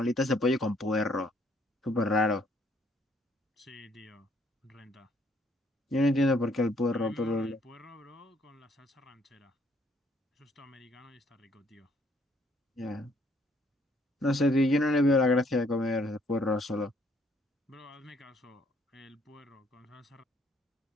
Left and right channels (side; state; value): both; normal; correlation 0.65